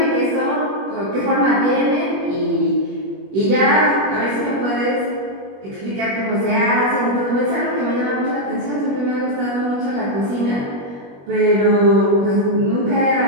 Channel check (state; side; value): late; left; 21 ms